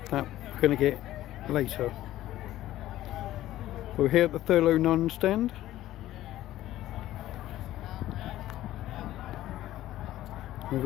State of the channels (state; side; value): quieter; right; 14.4 dB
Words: that we're going to get later. We're here at the Thurlow Nunn stand.